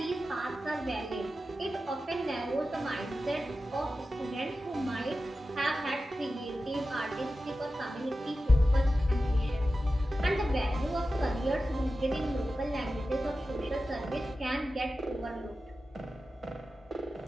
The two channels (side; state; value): both; normal; correlation 0.93